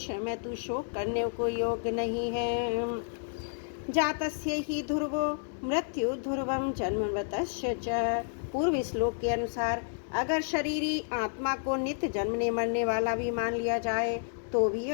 में तू शोक करने को योग्य नहीं है। जातस्य ही ध्रुवो मृत्यु ध्रुवम जन्म मृतस्य च। पूर्व श्लोक के अनुसार अगर शरीरी आत्मा को नित्य जन्मने मरने वाला भी मान लिया जाए तो भी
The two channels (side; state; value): right; silent; 57 dB below the other